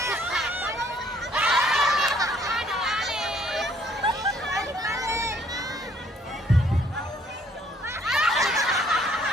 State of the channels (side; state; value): both; normal; correlation 0.63